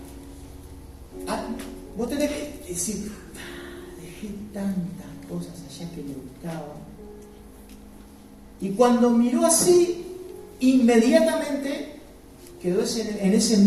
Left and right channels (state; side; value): identical; both; correlation 1.00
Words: vos tenés que decir: dejé tantas cosas allá que me gustaban. Y cuando miró así, inmediatamente quedó en ese